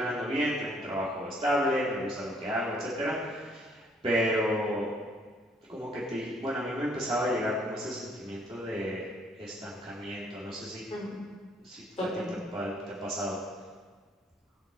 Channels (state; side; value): normal; both; correlation 0.64